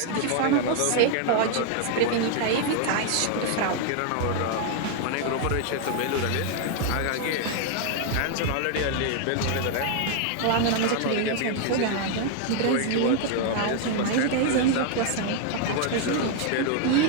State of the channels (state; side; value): different; both; correlation 0.00